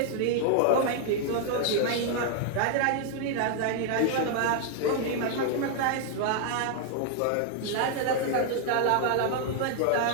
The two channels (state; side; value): different; both; correlation 0.00